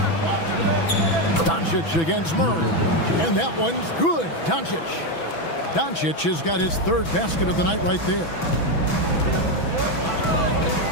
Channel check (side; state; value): right; late; 6.1 ms